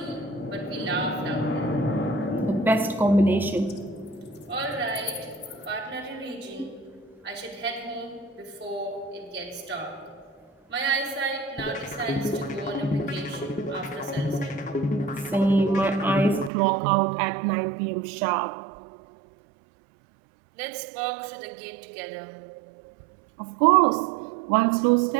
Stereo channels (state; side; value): drops out; left; at 16.5 s